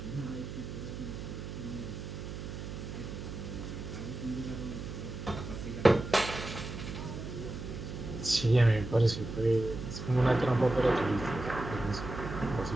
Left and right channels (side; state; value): right; noise; hum, 7 dB below the sound